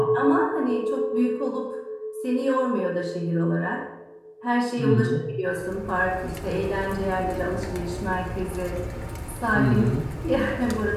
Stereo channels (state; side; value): identical; both; correlation 1.00